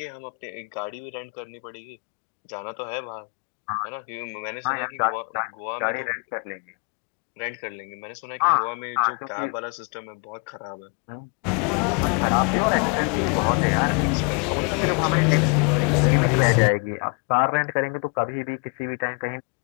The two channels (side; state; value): right; quieter; 35.3 dB